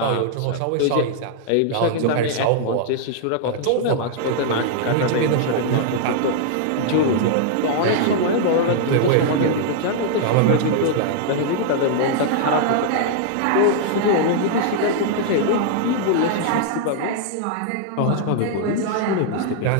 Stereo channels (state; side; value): different; both; correlation -0.01